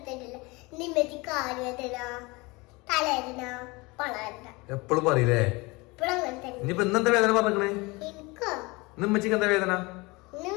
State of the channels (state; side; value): quieter; right; 24.7 dB